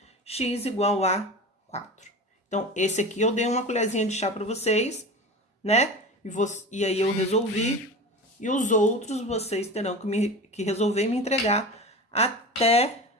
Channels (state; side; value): normal; both; correlation 0.31